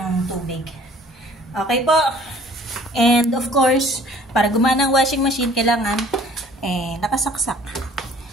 tubig. Okay po. And of course, para gumana ang washing machine, kailangan nakasaksak.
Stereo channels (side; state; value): both; normal; correlation 0.54